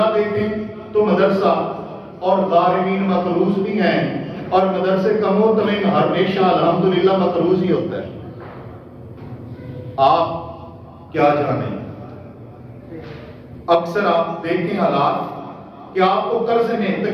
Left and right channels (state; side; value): identical; both; correlation 1.00